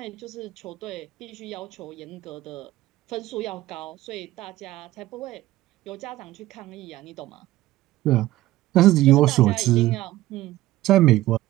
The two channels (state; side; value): quieter; left; 15.9 dB